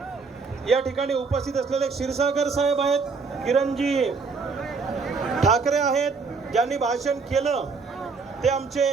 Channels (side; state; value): left; quieter; 4.7 dB